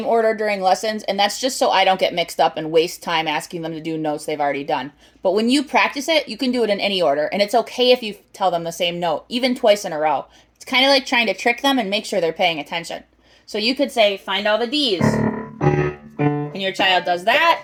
order during lessons, and that's just so I don't get mixed up and waste time asking them to do notes they've already done. But when you practice it, you can do it in any order, and it's okay if you tell them the same note, even twice in a row. It's kind of like trying to trick them and make sure they're paying attention. So you could say, find all the D's, and your child does that,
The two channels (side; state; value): both; identical; correlation 1.00